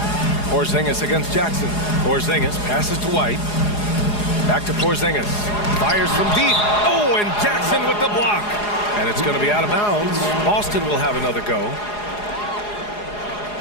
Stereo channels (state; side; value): late; right; 4.8 ms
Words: Porzingis against Jackson. Porzingis passes to White. Back to Porzingis. Fires from deep. Oh, and Jackson with the block. And it's going to be out of bounds. Boston will have another go.